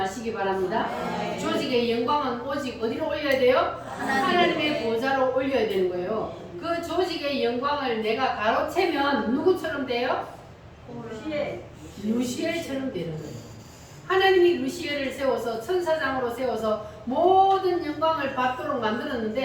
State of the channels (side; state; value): both; identical; correlation 1.00